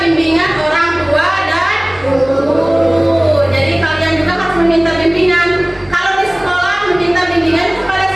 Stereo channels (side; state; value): right; noise; hum, 28 dB below the sound